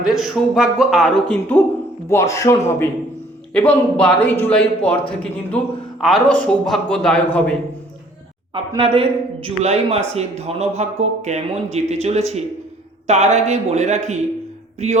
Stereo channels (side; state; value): both; normal; correlation 0.57